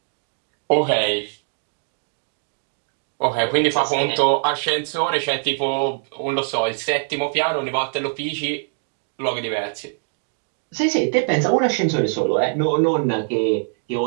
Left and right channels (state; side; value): silent; left; 56 dB below the other